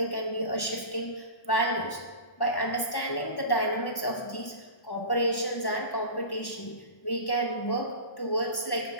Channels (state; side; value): late; right; 1.1 ms